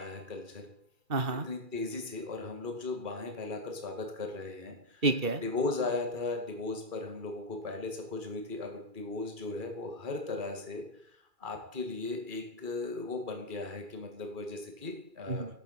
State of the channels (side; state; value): left; late; 2.3 ms